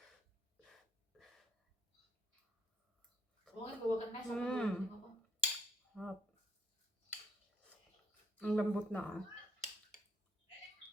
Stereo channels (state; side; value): normal; both; correlation 0.68